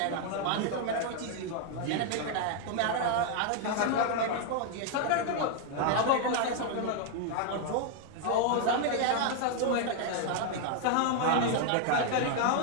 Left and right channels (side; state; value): both; different; correlation 0.00